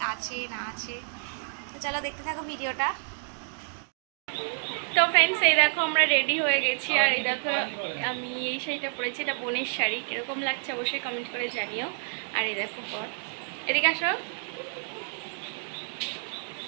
আছে না আছে। তো চলো দেখতে থাকো ভিডিওটা। তো ফ্রেন্ডস, এই দেখো আমরা রেডি হয়ে গেছি। আর এই দেখো আমি এই শাড়িটা পরেছি, এটা বোনের শাড়ি। কীরকম লাগছে অবশ্যই কমেন্ট করে জানিও। আর এই দেখো পর, এদিকে আসো।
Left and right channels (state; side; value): silent; left; digital silence